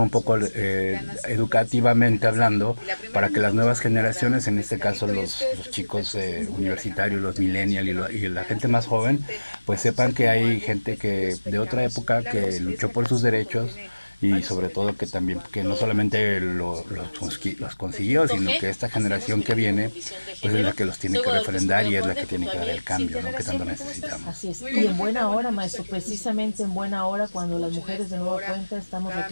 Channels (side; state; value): both; inverted; correlation -1.00